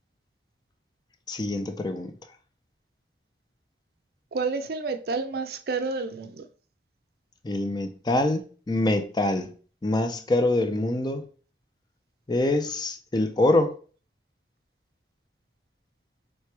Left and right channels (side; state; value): both; normal; correlation 0.64